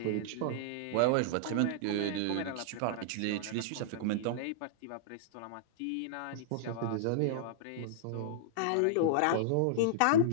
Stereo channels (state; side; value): different; both; correlation -0.02